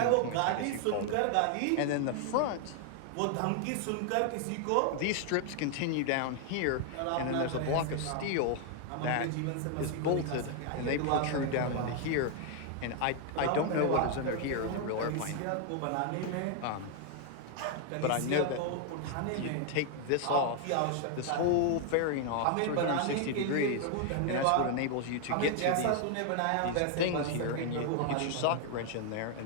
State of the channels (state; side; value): different; both; correlation 0.00